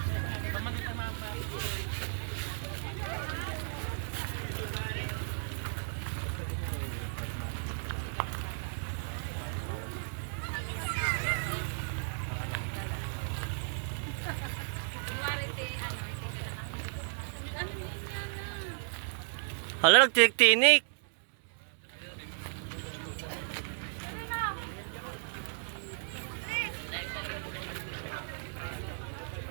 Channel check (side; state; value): left; silent; digital silence